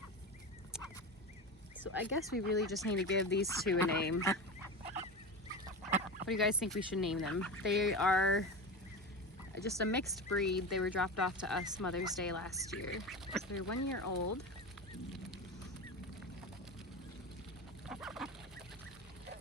So I guess we really just need to give these two a name. What do you guys think we should name them? They are just a mixed breed. They were dropped off to us Mother's Day last year. So they're 1 year old.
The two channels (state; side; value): normal; both; correlation 0.25